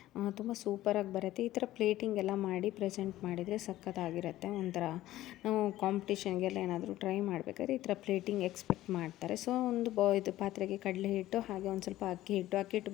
ತುಂಬ ಸೂಪರಾಗಿ ಬರುತ್ತೆ. ಈ ಥರ ಪ್ಲೇಟಿಂಗ್ ಎಲ್ಲ ಮಾಡಿ ಪ್ರೆಸೆಂಟ್ ಮಾಡಿದರೆ ಸಖತ್ತಾಗಿರುತ್ತೆ. ಒಂಥರ ನಾವು ಕಾಂಪಿಟೇಷನ್ಗೆಲ್ಲ ಏನಾದರೂ ಟ್ರೈ ಮಾಡಬೇಕಾದ್ರೆ ಈ ಥರ ಪ್ಲೇಟಿಂಗ್ ಎಕ್ಸ್ಪೆಕ್ಟ್ ಮಾಡ್ತಾರೆ. ಸೊ ಒಂದು ಇದು ಪಾತ್ರೆಗೆ ಕಡಲೆ ಹಿಟ್ಟು, ಹಾಗೆ ಒಂದು ಸ್ವಲ್ಪ ಅಕ್ಕಿ ಹಿಟ್ಟು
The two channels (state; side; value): quieter; right; 15.0 dB